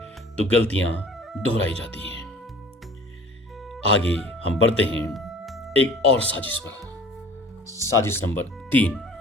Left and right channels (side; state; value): both; normal; correlation 0.46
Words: तो गलतियां दोहराई जाती हैं। आगे हम बढ़ते हैं एक और साजिश पर। साजिश नंबर 3।